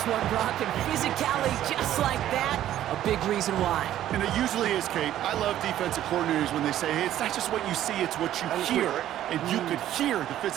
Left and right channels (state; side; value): quieter; left; 12.3 dB